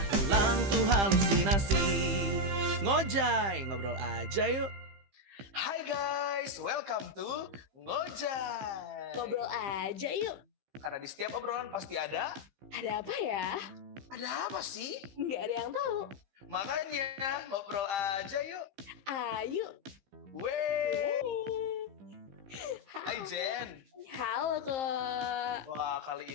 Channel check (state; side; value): late; left; 15 ms